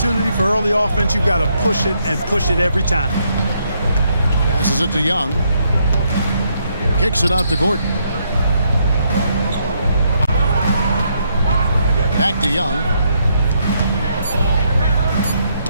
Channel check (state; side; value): inverted; both; correlation -0.75